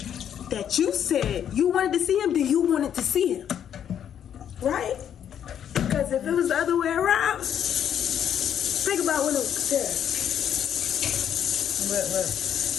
that you said you wanted to see him, then you wanted to see him, right? Because if it was the other way around, think about when it was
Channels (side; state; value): right; quieter; 9.3 dB